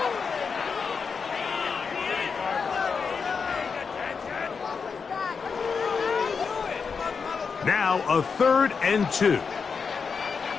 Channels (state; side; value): quieter; right; 5.6 dB